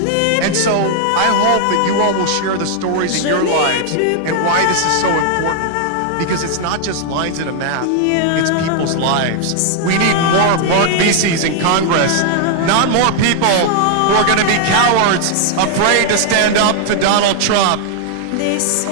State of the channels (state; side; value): different; both; correlation 0.00